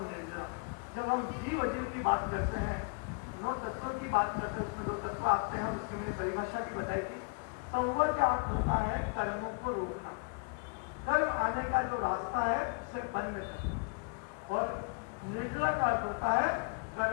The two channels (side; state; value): right; quieter; 35.4 dB